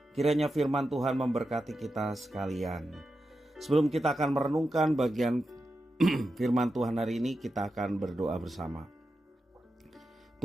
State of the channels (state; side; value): normal; both; correlation 0.89